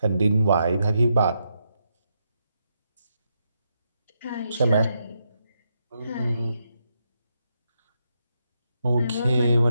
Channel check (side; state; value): both; inverted; correlation -0.82